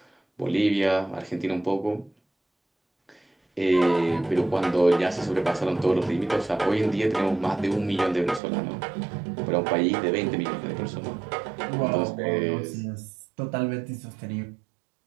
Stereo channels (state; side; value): drops out; left; at 8.4 s